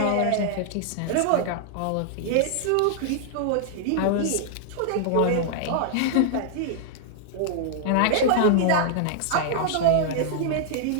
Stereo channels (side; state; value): both; different; correlation -0.01